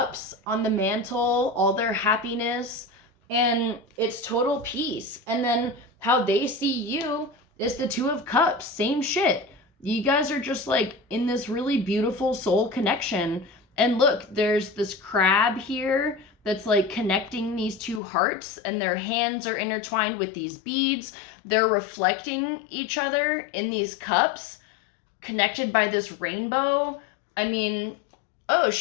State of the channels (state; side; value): drops out; right; at 18.0 s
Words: on the mantle, all their happiness, and it's total peace. And then how they see you is the 2 of Cups. Same shit. You guys are just like in this really beautiful soul connection. And look, there's this crab here that's like connecting these 2 hearts, and their hands are intertwined with these beads. They're reflecting each other in these cups, connected by this rainbow. I mean, oh